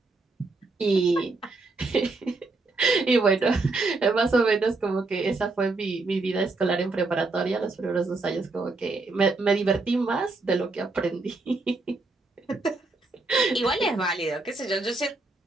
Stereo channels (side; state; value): left; quieter; 3.4 dB